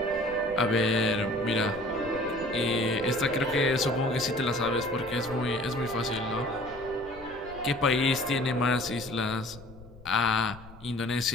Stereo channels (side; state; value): left; noise; rumble, 19 dB below the sound